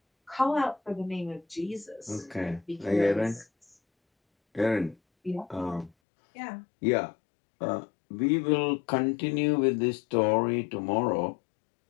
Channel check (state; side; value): drops out; right; at 5.9 s